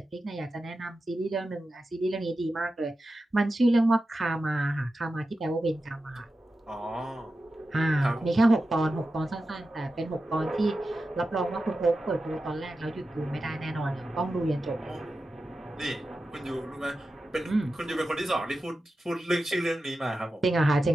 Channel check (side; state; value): both; normal; correlation 0.92